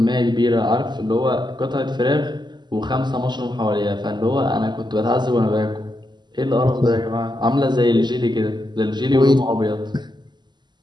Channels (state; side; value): late; left; 0.21 ms